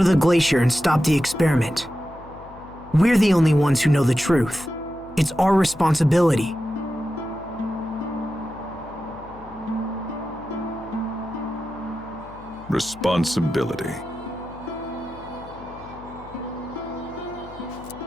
the glacier and stop the experiment. We're the only ones who know the truth. It's our responsibility. Responsibility.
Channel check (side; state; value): left; noise; hum, 20 dB below the sound